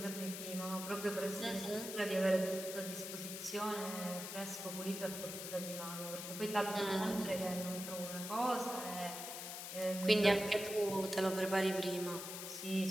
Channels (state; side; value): noise; left; hiss, 7 dB below the sound